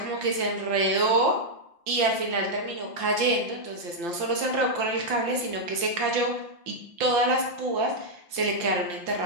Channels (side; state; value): left; late; 5.8 ms